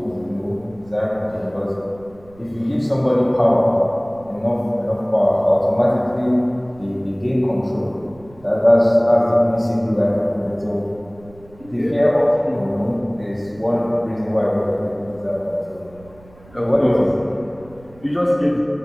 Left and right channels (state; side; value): noise; right; rumble, 25 dB below the sound